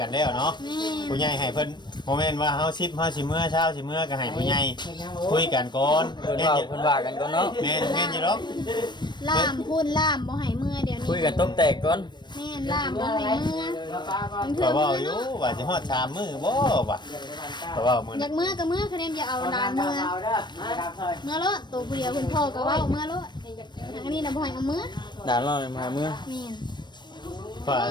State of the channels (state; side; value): late; right; 0.22 ms